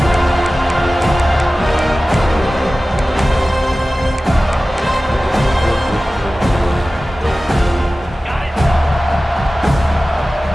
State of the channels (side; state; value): both; normal; correlation 0.96